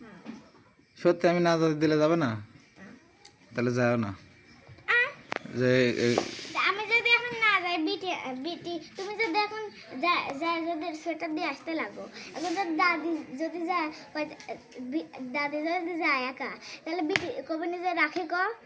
সত্যি আমি না যাতে দিলে যাবে না? তাহলে যাও না। যে আমি যদি এখন না যাই বিটি বিটি তুমি যদি এখন যদি সোয়েটার দিয়ে আসতে লাগো এখন যদি দাদি যদি যায় দাদি যদি যায় একা তাহলে বিটি কবে নিজে রাখে ক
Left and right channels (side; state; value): both; identical; correlation 1.00